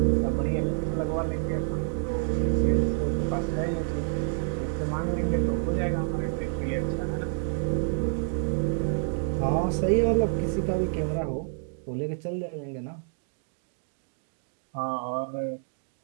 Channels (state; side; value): silent; left; digital silence